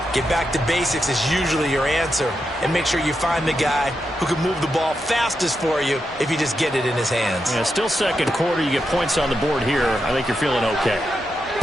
Get back to basics is usually your answer. And make sure you find the guy who can move the ball fastest for you if you just get it in his hands. Yeah, still second quarter. You get points on the board here. I think you're feeling okay.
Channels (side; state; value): both; normal; correlation 0.86